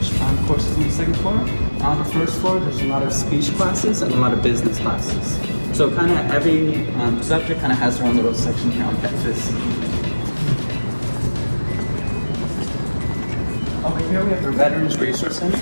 courses on the second floor. On the first floor, there's a lot of speech classes and a lot of business classes. So kind of every subject kind of has their own little section here on campus. Over here we have our Veterans Resource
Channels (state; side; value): inverted; both; correlation -1.00